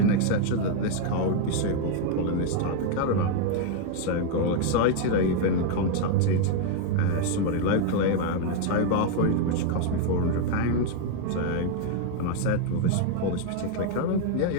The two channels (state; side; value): different; both; correlation 0.00